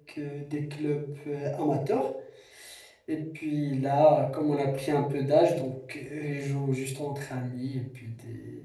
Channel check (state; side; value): identical; both; correlation 1.00